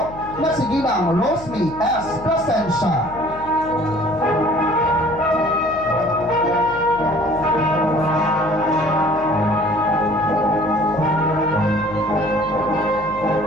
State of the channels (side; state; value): left; noise; hum, 15 dB below the sound